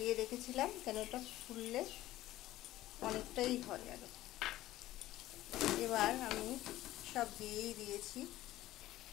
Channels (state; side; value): quieter; right; 15.4 dB